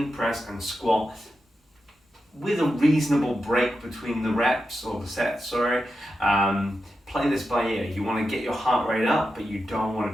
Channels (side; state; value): both; normal; correlation 0.89